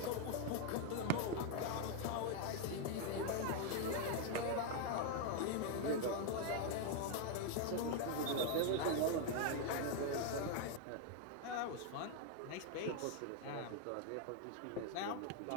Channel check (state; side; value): different; both; correlation 0.01